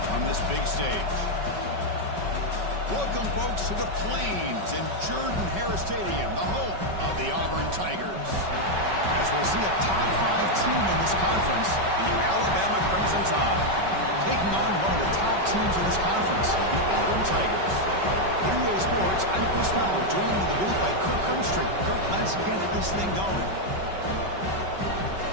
on this big stage? Welcome, folks, to the Plains and Jordan-Hare Stadium, the home of the Auburn Tigers. As we'll see a top 5 team in this conference, the Alabama Crimson Tide, taking on one of the top teams in this conference, the Auburn Tigers. For EA Sports, I'm Chris Fowler, joined in the booth by Kirk Herbstreit. Kirk, let's get this thing going.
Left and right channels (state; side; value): late; left; 5.3 ms